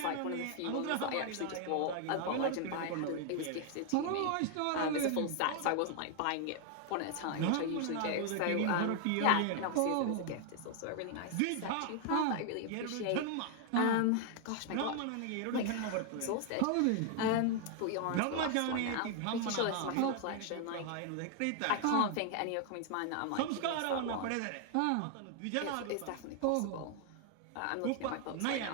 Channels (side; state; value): both; different; correlation 0.00